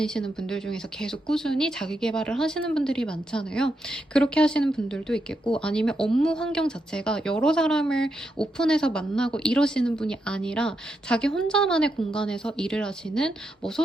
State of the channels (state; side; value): normal; both; correlation 0.83